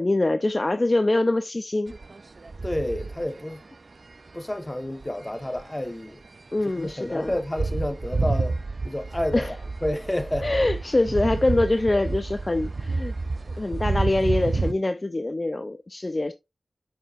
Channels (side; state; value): both; normal; correlation 0.97